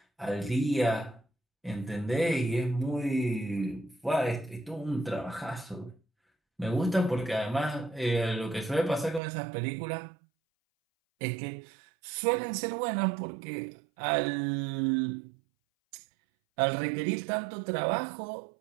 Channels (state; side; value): drops out; left; at 9.2 s